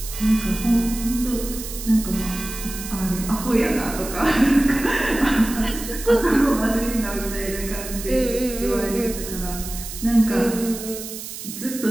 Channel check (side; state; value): right; noise; hiss, 10 dB below the sound